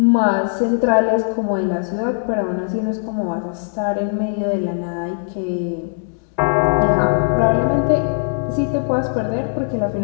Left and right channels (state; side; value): silent; right; digital silence